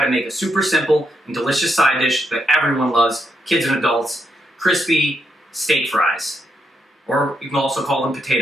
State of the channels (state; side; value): normal; both; correlation 0.80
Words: to make a super simple and delicious side dish that everyone loves, kids and adults, crispy steak fries. Or you can also call them